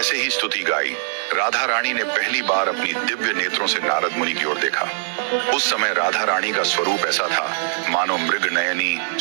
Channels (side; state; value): left; silent; 58 dB below the other